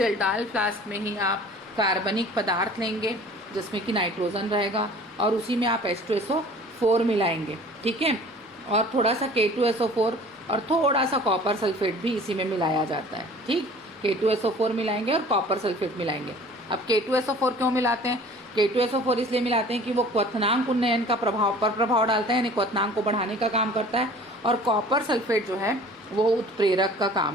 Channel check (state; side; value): normal; both; correlation 0.47